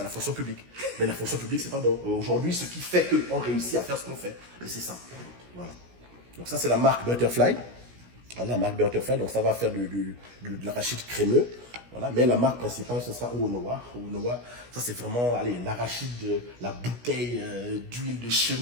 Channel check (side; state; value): left; late; 16 ms